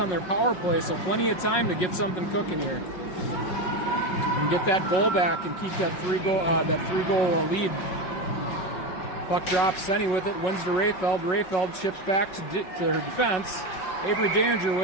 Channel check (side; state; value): right; late; 5.4 ms